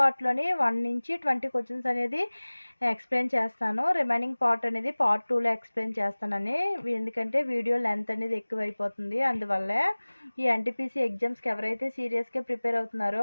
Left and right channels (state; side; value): inverted; both; correlation -1.00